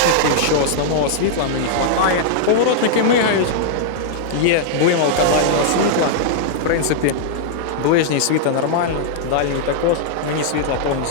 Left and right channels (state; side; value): different; both; correlation -0.01